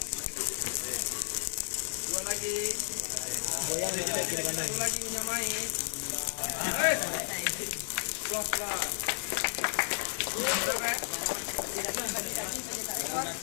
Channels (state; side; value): silent; right; digital silence